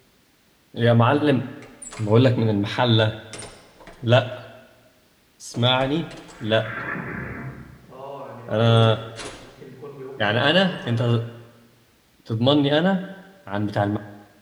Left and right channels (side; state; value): both; identical; correlation 1.00